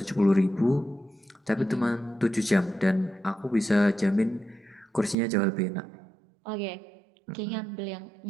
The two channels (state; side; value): drops out; left; at 5.2 s